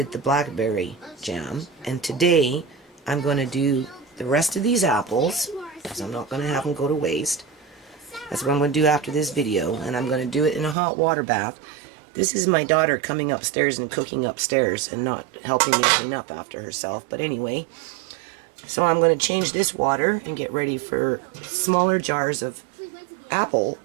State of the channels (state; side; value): drops out; left; at 10.8 s